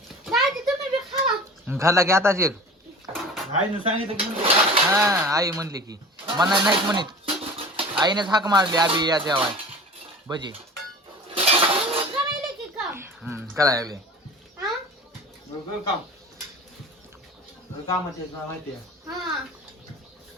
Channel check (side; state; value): both; normal; correlation 0.39